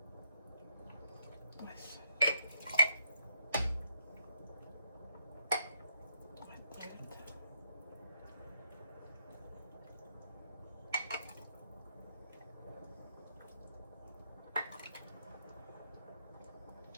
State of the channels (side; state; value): both; inverted; correlation -0.74